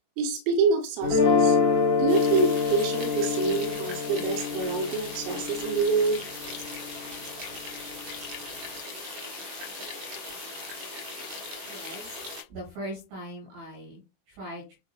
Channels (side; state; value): left; late; 21 ms